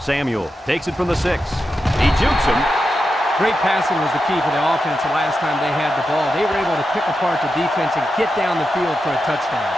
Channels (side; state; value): both; normal; correlation 0.89